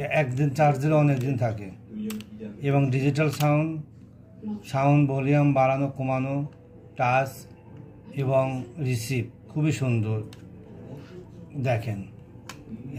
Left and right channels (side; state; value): both; identical; correlation 1.00